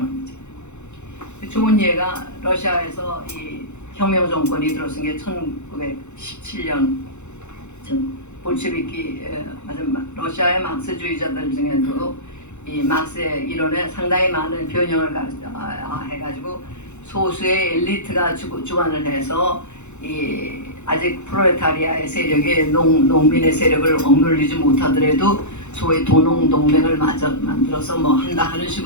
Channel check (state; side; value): late; right; 0.83 ms